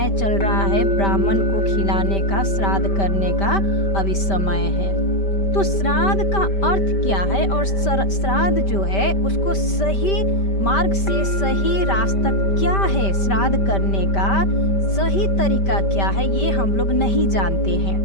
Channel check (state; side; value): late; right; 5.1 ms